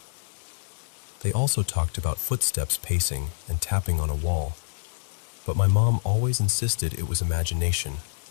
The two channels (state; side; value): silent; right; digital silence